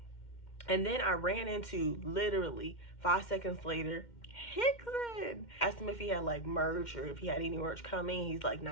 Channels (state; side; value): late; right; 2.1 ms